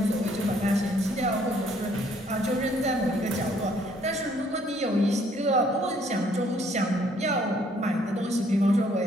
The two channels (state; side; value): normal; both; correlation 0.64